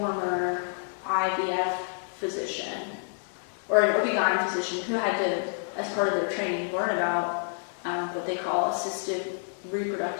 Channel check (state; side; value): silent; right; digital silence